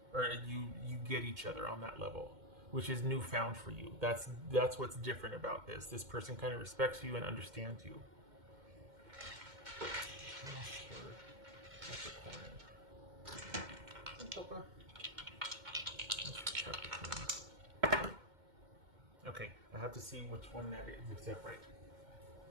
Or you get each other on that level, which is newfound for you. That's what's different about this. This person kind of respects you and understands you. Okay, I have to see which one that is. Is that right?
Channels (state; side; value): late; left; 2.1 ms